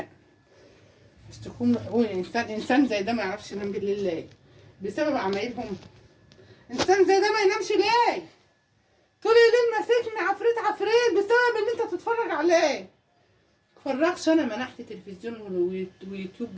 اشتكوهم لحقوق الانسان. انسان زي ده ما يعرفش ينام بالليل ليه؟ بسبب عمايلهم. انسان زي ده ما ينامش ليه؟ طول الليل ماسكني عفريت عفريت بسبب ان انت تتفرج عليه. متفرجش انا منحت تلفزيون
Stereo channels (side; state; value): both; identical; correlation 1.00